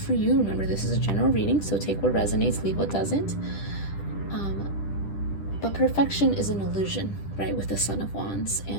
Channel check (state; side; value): late; right; 10 ms